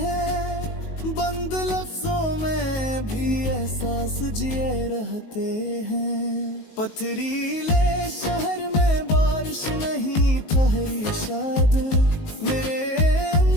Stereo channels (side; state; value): right; late; 19 ms